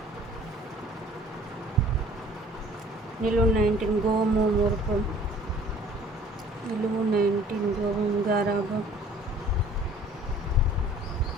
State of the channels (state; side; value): normal; both; correlation 0.52